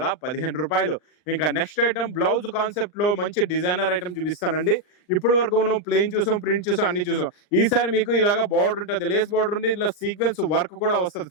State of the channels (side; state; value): right; late; 39 ms